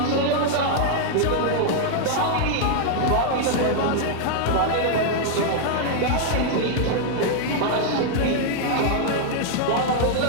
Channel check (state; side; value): different; both; correlation 0.00